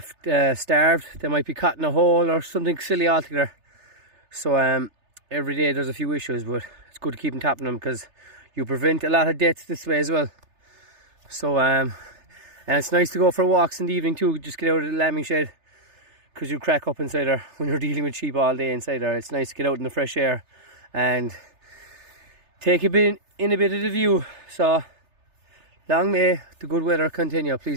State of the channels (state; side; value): late; left; 3.3 ms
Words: starved. They might be caught in a hole or something silly altogether. So every day there's a few issues, but it's good to keep on top of them because you prevent a lot of deaths this way as well. So and it's nice to go for walks in the evening too. Just get out of the lambing shed, because you crack up inside there when you're dealing with sheep all day inside there. It's nice to get out in the fresh air and take a bit of the view. So long may the good weather continue,